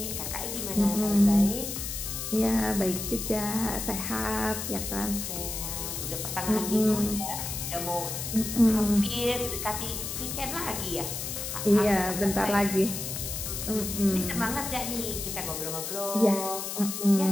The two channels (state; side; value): noise; left; hiss, 5 dB below the sound